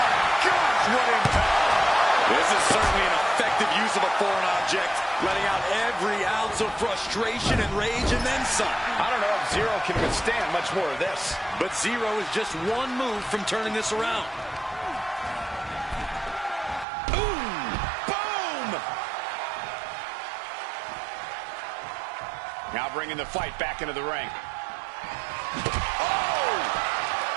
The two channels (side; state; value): left; drops out; at 16.9 s